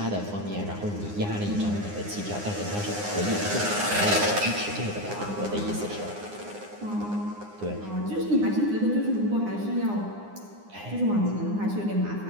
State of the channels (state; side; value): late; left; 9.8 ms